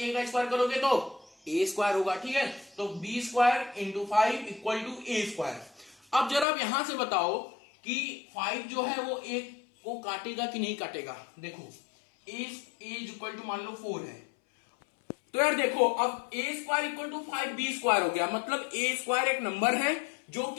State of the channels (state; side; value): drops out; right; at 6.5 s